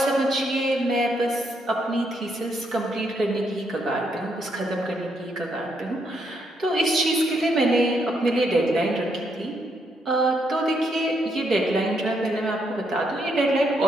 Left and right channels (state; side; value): normal; both; correlation 0.76